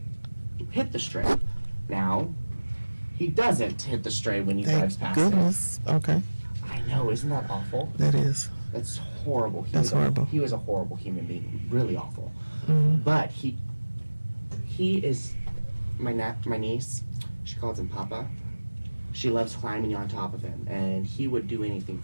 hit the stray. Now, he doesn't hit the stray when he drives Thank past goodness. Okay, it. I know, isn't that awful? that is. That's horrible. That's horrible. He was a horrible human being, really awful. Mhm. But he is my niece. She calls him Papa. She loves climbing on top of him, and he would do anything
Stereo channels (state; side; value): inverted; both; correlation -1.00